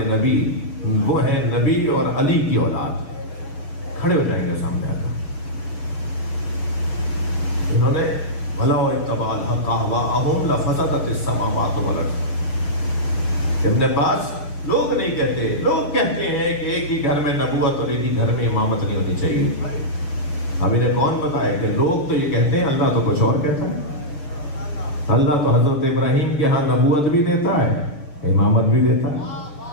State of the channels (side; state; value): right; late; 6.7 ms